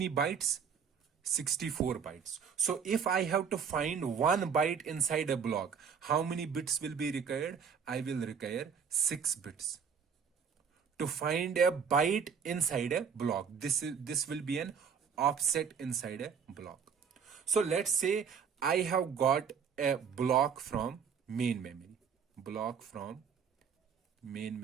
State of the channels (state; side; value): quieter; left; 6.8 dB